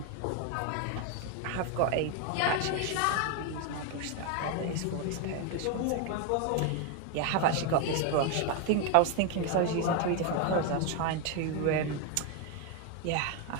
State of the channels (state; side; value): different; both; correlation 0.01